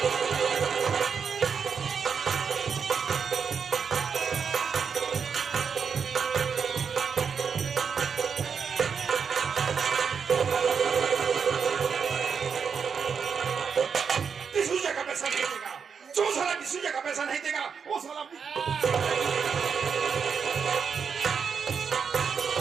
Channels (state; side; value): quieter; left; 6.3 dB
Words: डिसूजा का पैसा नहीं देगा, जो साला डिसूजा का पैसा नहीं देगा वो साला